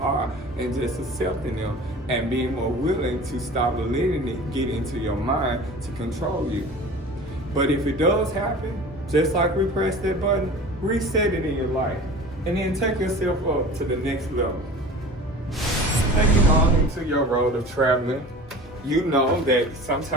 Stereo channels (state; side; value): normal; both; correlation 0.39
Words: and just accepting them and being more willing to stop letting it get into your mind to control you. But if it does happen, just like we press that button, reset it in your life and then take yourself up to the next level. Taking on into your road of traveling, you know that